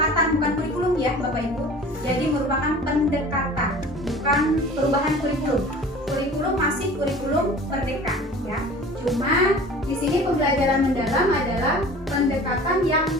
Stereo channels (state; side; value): normal; both; correlation 0.43